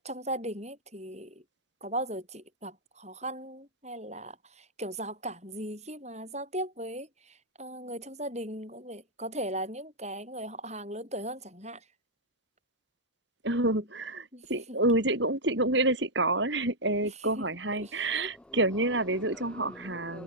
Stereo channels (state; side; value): normal; both; correlation -0.05